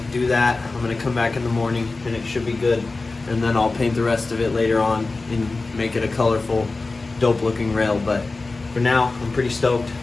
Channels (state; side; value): quieter; right; 3.6 dB